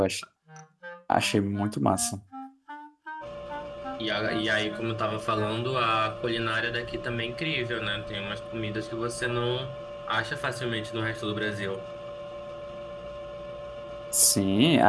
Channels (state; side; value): identical; both; correlation 1.00